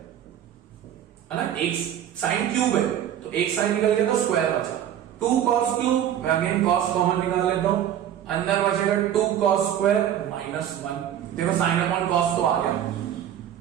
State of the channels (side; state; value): left; quieter; 10.5 dB